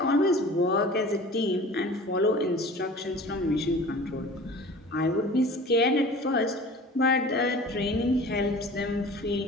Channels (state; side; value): normal; both; correlation 0.42